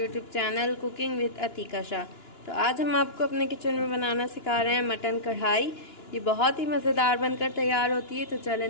channel cooking with Atika Shah. तो आज हम आपको अपने किचन में बनाना सिखा रहे हैं मटन कढ़ाई। ये बहुत ही मज़ेदार बनकर तैयार होती है। तो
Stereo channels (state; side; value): late; right; 2.9 ms